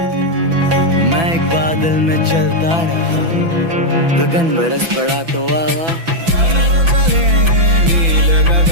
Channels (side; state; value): left; late; 6.0 ms